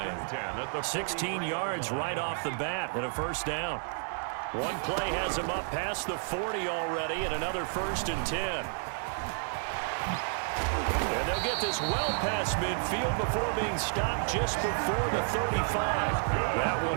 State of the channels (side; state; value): left; silent; digital silence